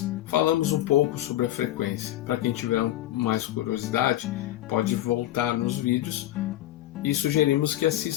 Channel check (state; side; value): quieter; right; 14.2 dB